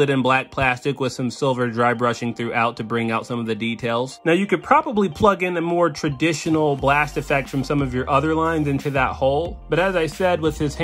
in black plastic with some silver dry brushing throughout to bring out some of the details. Now you could probably plug in a more traditional blast effect from some of your other lines into that hole, but as I said, with his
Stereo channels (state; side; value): identical; both; correlation 1.00